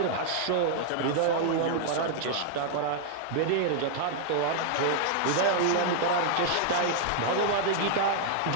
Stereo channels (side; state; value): both; different; correlation 0.00